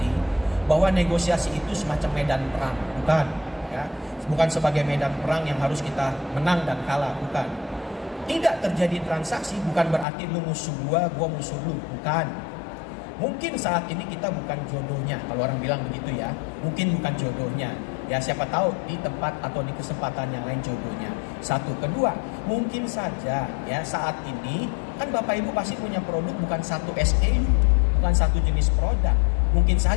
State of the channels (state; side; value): drops out; right; at 10.1 s